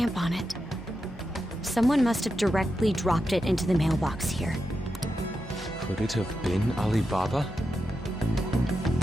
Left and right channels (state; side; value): normal; both; correlation 0.88